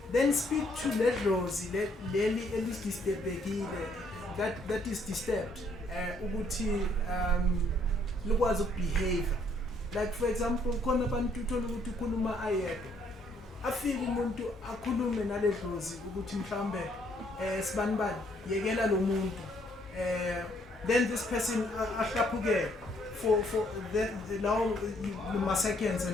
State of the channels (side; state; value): both; normal; correlation 0.68